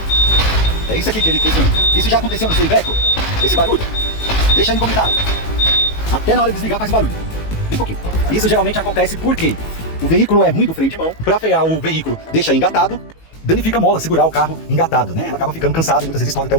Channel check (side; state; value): right; late; 18 ms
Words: É isso aqui que ele questiona. Isso já aconteceu no seu Iveco? Esse barulho? Deixa aí no comentário. Até na hora de desligar faz barulho. Bem pouquinho. Isso geralmente acontece porque o veículo é ruim do freio de mão. Para frear o veículo, deixa engatado. Danifica a mola, segurar o carro engatado, né? Ela acaba ficando cansada e muitas vezes estoura até o